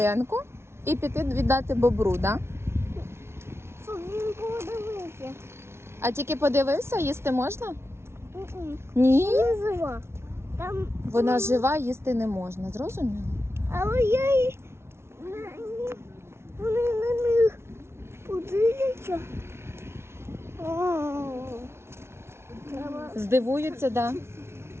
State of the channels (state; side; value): late; left; 0.12 ms